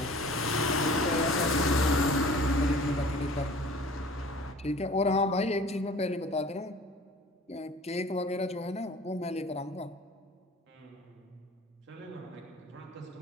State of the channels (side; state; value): both; normal; correlation 0.46